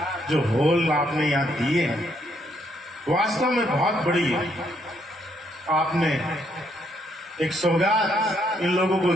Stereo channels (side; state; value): both; normal; correlation 0.72